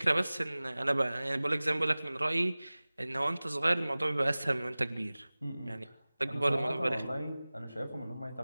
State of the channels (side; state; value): both; inverted; correlation -0.99